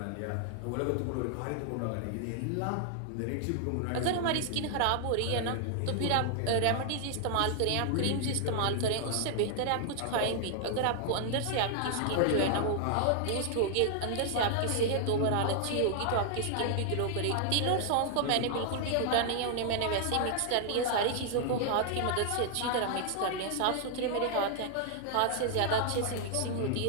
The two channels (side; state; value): both; different; correlation 0.00